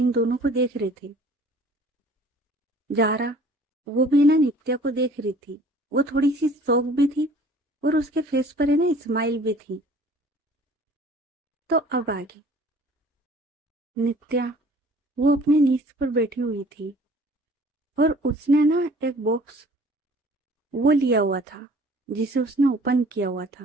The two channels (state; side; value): normal; both; correlation 0.51